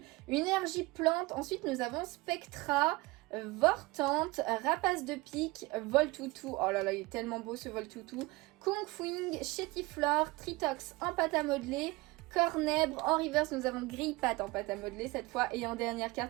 Une énergie plante, ensuite nous avons Spectra, Vortante, Rapace de pique, Voltoutou. Oh là là, il est tellement beau ce Voltoutou. Kungfuing, Chétiflore, Tritox en pâte à modeler, Cornèbre. En reverse, nous avons Grillpat en pâte à modeler cette fois. Et en dernière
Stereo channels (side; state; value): left; quieter; 22.6 dB